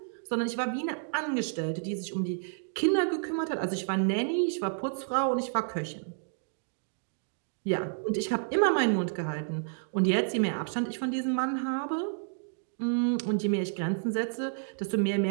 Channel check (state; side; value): silent; left; digital silence